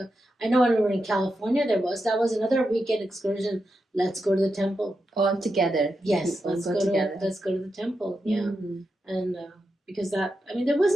I know when we were in California, that was another weekend excursion. Let's go to the temple. All together. Yes, let's go to the temple. Yeah. And because there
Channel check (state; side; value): normal; both; correlation 0.87